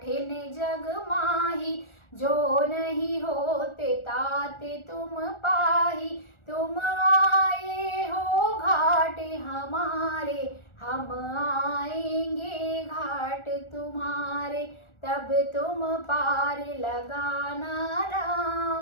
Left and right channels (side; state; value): right; late; 1.4 ms